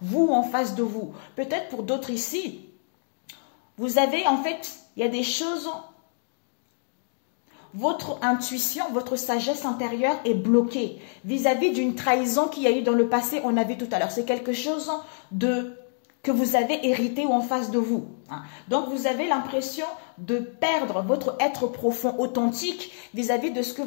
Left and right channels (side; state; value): right; silent; digital silence